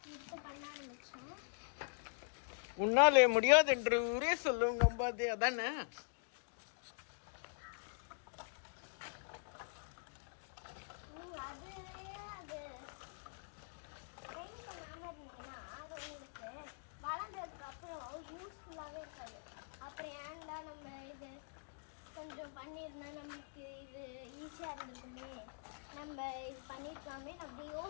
உன்னாலே முடியாது என்று ஊரே சொல்லும் நம்பாதே. அதானே அப்புறம் ஏன்டா நம்ம இது கொஞ்சம் பண்ணியிருந்தா நமக்கு இது ஈஸியாக இருந்திருக்குமே, நம்ம இது பண்ணியிருக்கலாமே அப்படி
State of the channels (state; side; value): silent; right; digital silence